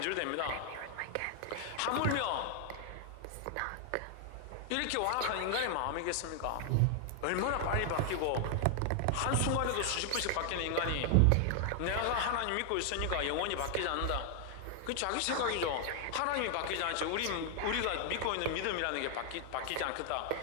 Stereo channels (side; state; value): both; different; correlation 0.00